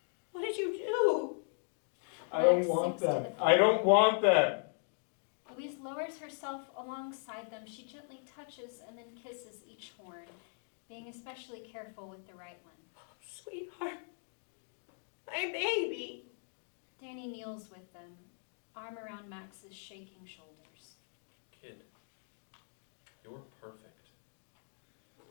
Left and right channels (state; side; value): silent; right; 53 dB below the other